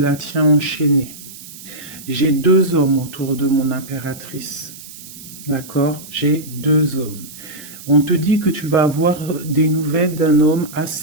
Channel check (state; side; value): noise; right; hiss, 16 dB below the sound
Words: tient enchaînée. J'ai deux hommes autour de mon impératrice. D'accord? J'ai deux hommes. On te dit que tu vas avoir des nouvelles d'un homme